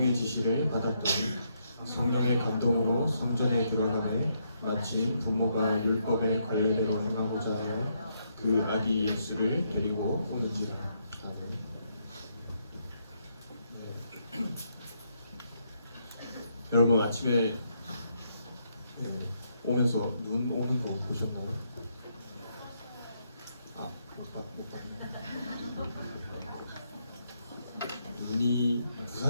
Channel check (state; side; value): inverted; both; correlation -0.76